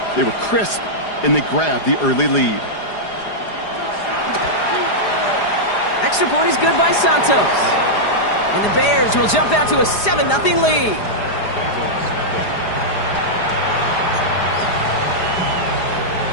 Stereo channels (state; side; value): late; right; 4.9 ms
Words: they were crisp, and they grabbed the early lead. Extra point is good by Santos. And the Bears will jump out to a 7-0 lead.